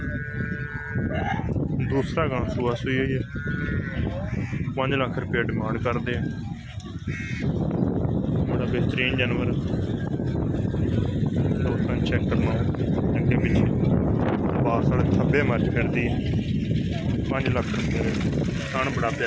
दूसरा गां सुआ सुई हुई है। 5 लाख रुपया डिमांड करते हैं। बड़ा बेहतरीन जानवर दोस्तों चेक करना अगे पिछे पास वाले थब्बे मर्च करती है। 5 लाख रुपये खान बड़ा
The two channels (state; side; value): identical; both; correlation 1.00